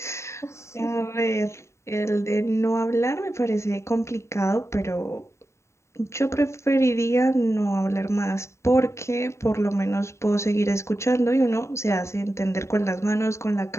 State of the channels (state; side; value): late; right; 0.14 ms